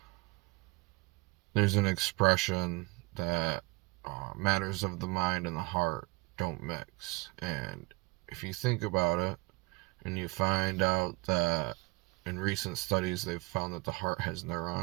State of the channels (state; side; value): quieter; left; 25.6 dB